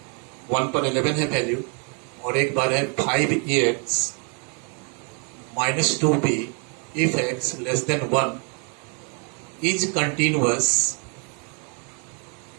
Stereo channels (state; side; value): quieter; left; 37.5 dB